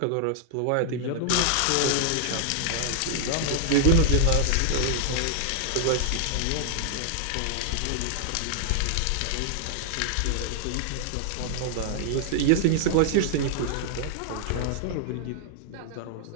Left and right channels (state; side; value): different; both; correlation -0.01